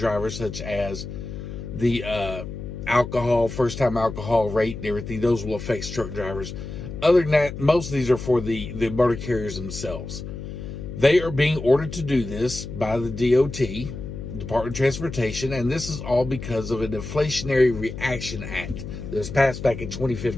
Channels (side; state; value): left; noise; hum, 9 dB below the sound